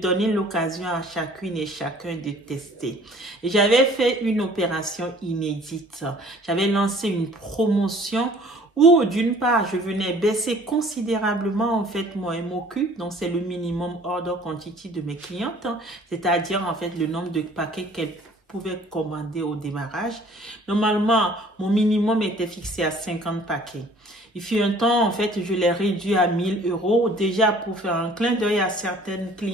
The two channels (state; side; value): normal; both; correlation 0.53